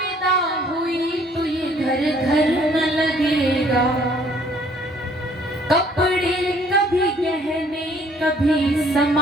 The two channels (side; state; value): both; normal; correlation 0.60